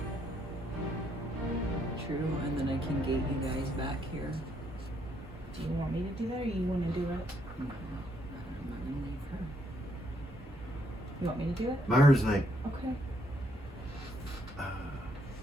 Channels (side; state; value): both; normal; correlation 0.73